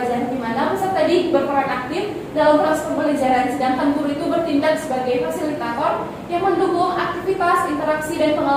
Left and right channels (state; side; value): identical; both; correlation 1.00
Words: di mana peserta didik berperan aktif dalam proses pembelajaran, sedangkan guru itu bertindak sebagai fasilitator yang mendukung aktivitas, interaksi, dan